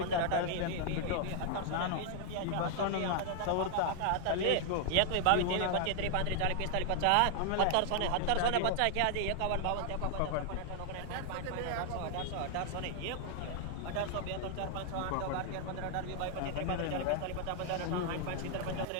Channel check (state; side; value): different; both; correlation 0.00